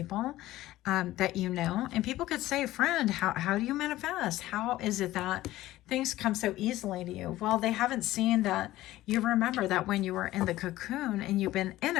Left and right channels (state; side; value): quieter; right; 15.9 dB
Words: that you know. And people could say, friend, how do you manifest? How is it that things come so easily to you? Well, they haven't seen that you remember that when you were in the cocoon, and you've been in